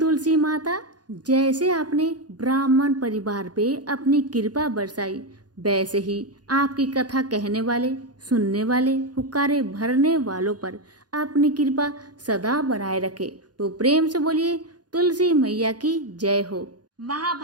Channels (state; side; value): late; left; 0.69 ms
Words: माता, जैसे आपने ब्राह्मण परिवार पे अपनी कृपा बरसाई, वैसे ही आपकी कथा कहने वाले, सुनने वाले, हुक्कारे भरने वालों पर अपनी कृपा सदा बनाए रखे। तो प्रेम से बोलिए, तुलसी मैया की जय हो।